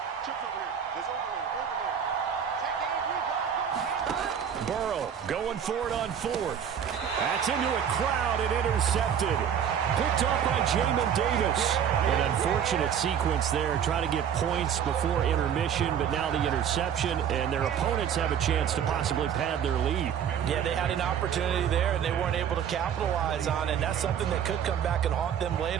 Chips over here. There's overload. Burrow Going for it on fourth. That's into a crowd and intercepted. Picked off by Jamin Davis. An unfortunate sequence there, trying to get points before intermission, but now the interception, and their opponents have a chance to possibly pad their lead. Yeah, they had an opportunity there, and they weren't able to capitalize on it, and that's something that could come back and haunt them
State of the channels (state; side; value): quieter; left; 8.5 dB